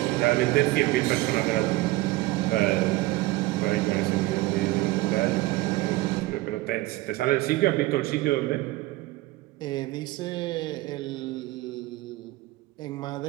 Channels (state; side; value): quieter; left; 18.8 dB